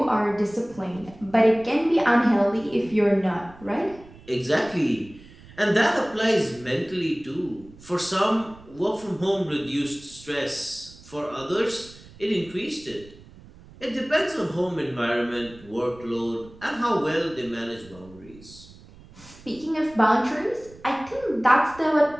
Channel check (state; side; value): noise; right; rumble, 21 dB below the sound